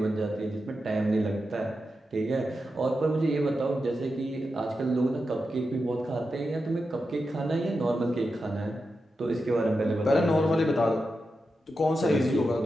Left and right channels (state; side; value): normal; both; correlation 0.89